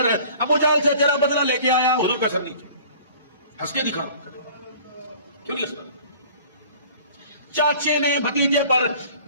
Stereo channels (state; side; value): inverted; both; correlation -0.48